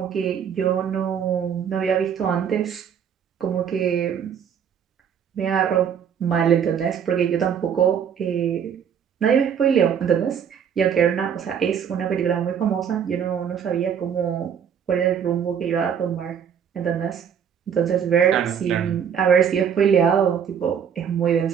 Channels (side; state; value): left; quieter; 8.0 dB